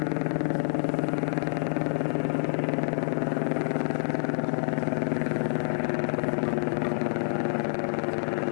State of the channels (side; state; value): right; silent; 60 dB below the other